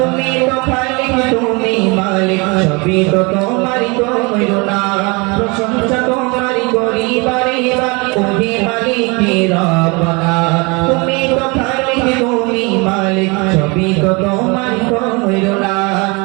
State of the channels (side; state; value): left; quieter; 28.3 dB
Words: তো খালিক তুমি মালিক সবই তো তোমারই করুণা প্রশংসা তোমার করি বারে বারে ওহে মালিক রব্বানা তুমি তো খালিক তুমি মালিক সবই তো তোমার করুণা